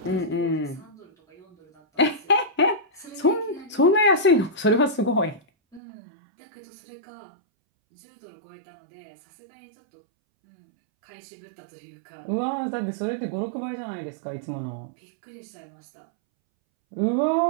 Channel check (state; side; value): drops out; left; at 5.8 s